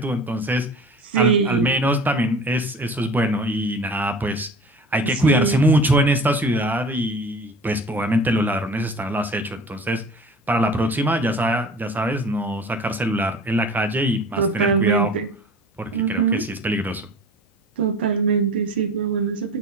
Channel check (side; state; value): both; normal; correlation 0.40